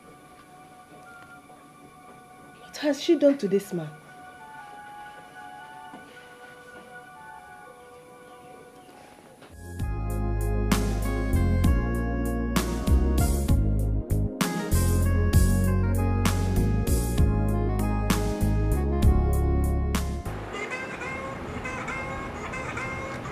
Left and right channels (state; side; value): identical; both; correlation 1.00